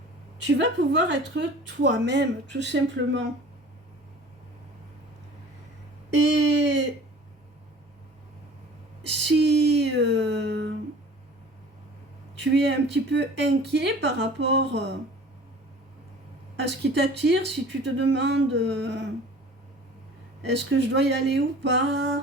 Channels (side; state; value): both; normal; correlation 0.45